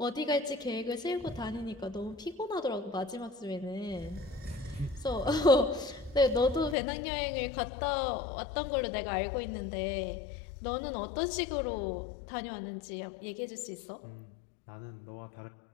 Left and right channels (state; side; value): drops out; right; at 6.8 s